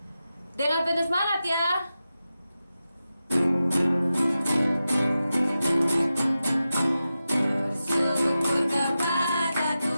Dengan penuh semangat ya. Bersyukur kepada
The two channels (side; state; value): both; inverted; correlation -0.92